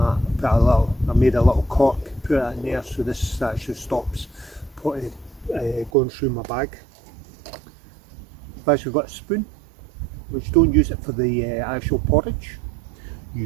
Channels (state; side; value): drops out; left; at 5.9 s